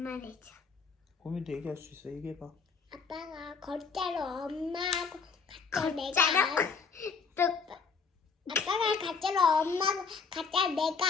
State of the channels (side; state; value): right; quieter; 5.2 dB